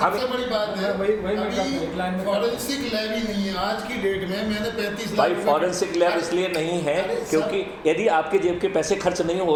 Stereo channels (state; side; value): identical; both; correlation 1.00